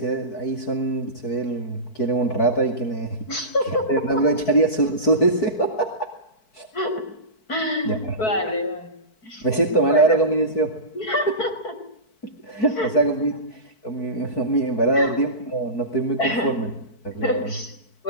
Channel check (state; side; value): late; right; 4.6 ms